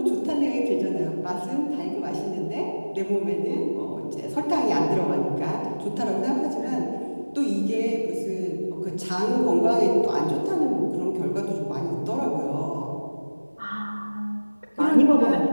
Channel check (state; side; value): inverted; both; correlation -1.00